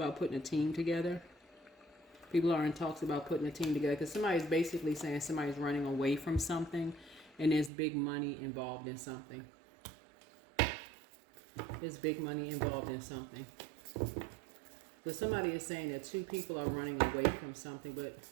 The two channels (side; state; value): left; drops out; at 7.7 s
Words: putting a team together. People are in talks about putting a team together because somebody's basically saying somebody's running away from something, and there's big money involved in something. There's big money involved in something. So somebody is saying that two people are running away from something, but